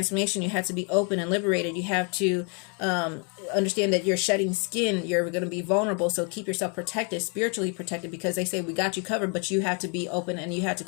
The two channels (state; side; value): quieter; right; 36.2 dB